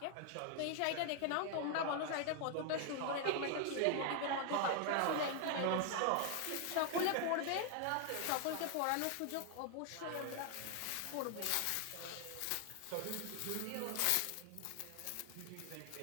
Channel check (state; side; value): different; both; correlation 0.00